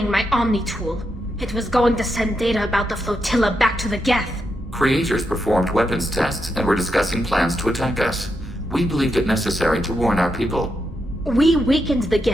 my Omni tool. It was going to send data about the flotilla back to the Geth. Creators performed weapons tests and were discussing plans to attack us. We believed it necessary to warn our people. We weakened the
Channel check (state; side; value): normal; both; correlation 0.83